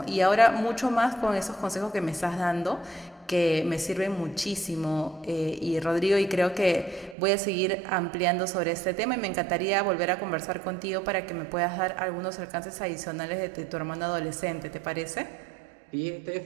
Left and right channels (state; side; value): drops out; left; at 7.2 s